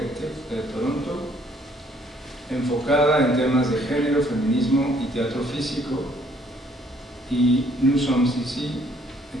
de Toronto, enfocada en temas de género, feminismo y teatro físico, y Nous sommes ici de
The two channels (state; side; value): normal; both; correlation 0.63